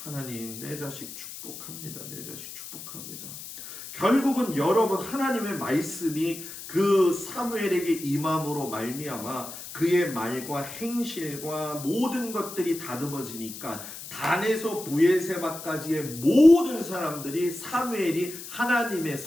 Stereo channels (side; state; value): left; noise; hiss, 12 dB below the sound